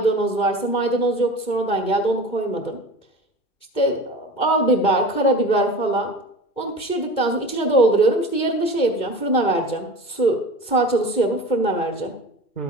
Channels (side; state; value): right; late; 2.2 ms